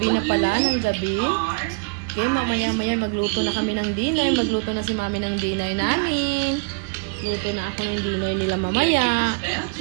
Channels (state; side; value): quieter; left; 34.2 dB